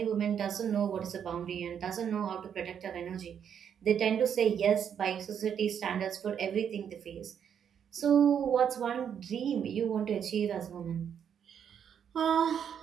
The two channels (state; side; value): quieter; left; 8.3 dB